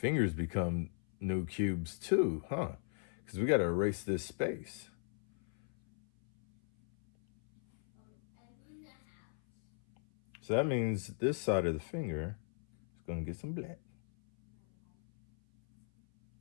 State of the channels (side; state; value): right; silent; 53 dB below the other